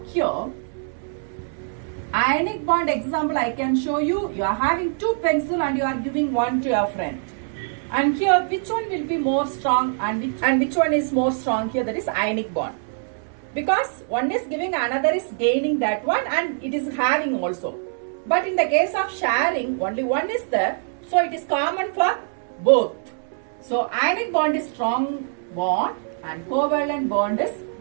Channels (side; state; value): left; silent; 63 dB below the other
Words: here, ionic bond example I can show you. You are having two pencils and you are giving one to your friend. And here, which one will be more strong and which one is more strong here? That is ionic bond. Because one is giving, another is gaining that one, and it is having also. But in the case of sharing, only one is there. So it is common for both. So ionic bond is strong bond and covalent bond is